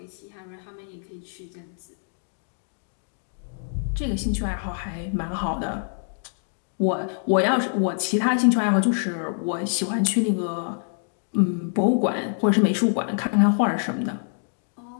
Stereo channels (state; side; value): silent; right; digital silence